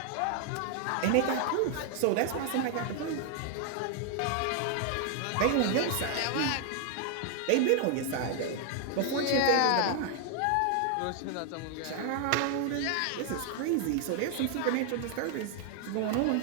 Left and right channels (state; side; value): different; both; correlation 0.00